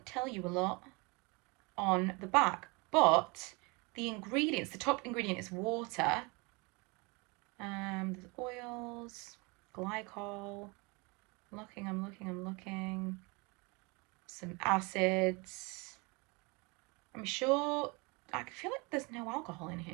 tell you a lot on the back, but the ingredients, the top ingredient is water. There's oils, glycol. I'm looking. Some acids. I'm sure, I feel like there's no alcohol in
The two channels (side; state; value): left; quieter; 28.1 dB